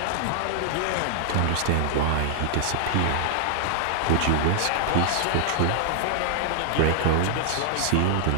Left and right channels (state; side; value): different; both; correlation 0.00